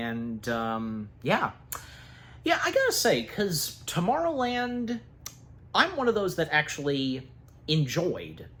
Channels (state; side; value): identical; both; correlation 1.00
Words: yeah. Yeah, I gotta say, because Tomorrowland, I'm one of those that actually enjoyed